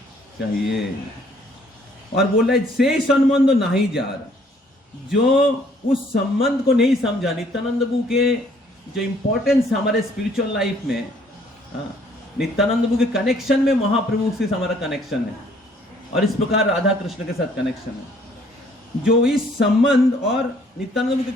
चाहिए। और बोल रहे से संबंध नहीं जा रहा, जो उस संबंध को नहीं समझा, नित्यानंद प्रभु के जो इंपॉर्टेंस हमारे स्पिरिचुअल लाइफ में, नित्यानंद प्रभु के कनेक्शन में महाप्रभु से हमारा कनेक्शन है, और इस प्रकार राधा कृष्ण के साथ कनेक्शन है। जो इस संबंध और नित्यानंद प्रभु के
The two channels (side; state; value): both; normal; correlation 0.61